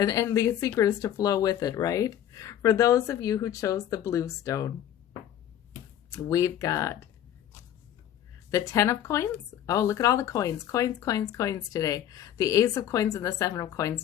the secret is to flow with it, right? For those of you who chose the blue stone, we've got the 10 of coins. Oh, look at all the coins. Coins, coins, coins today. The Ace of coins and the 7 of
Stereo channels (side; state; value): right; quieter; 10.9 dB